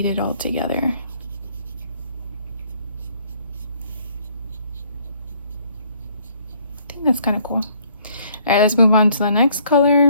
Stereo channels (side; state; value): both; inverted; correlation -0.63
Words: it all together. I think that's kind of cool. All right, let's move on to the next